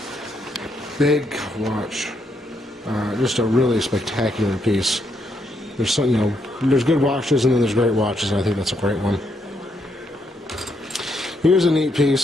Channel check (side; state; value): both; normal; correlation 0.77